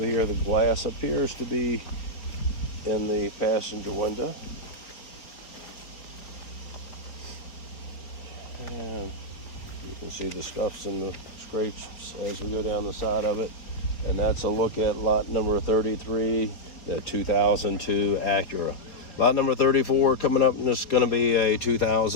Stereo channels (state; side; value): late; right; 4.2 ms